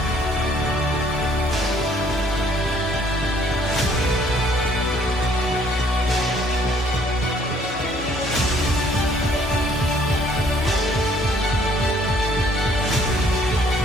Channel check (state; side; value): normal; both; correlation 0.62